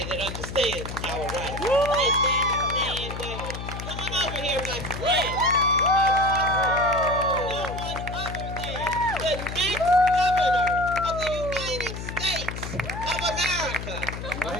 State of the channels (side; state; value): left; noise; hum, 7 dB below the sound